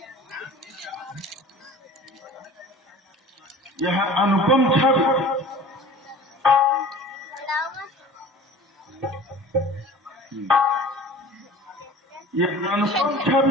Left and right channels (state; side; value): normal; both; correlation 0.41